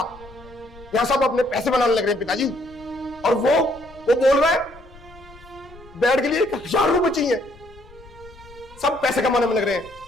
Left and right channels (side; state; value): left; noise; rumble, 22 dB below the sound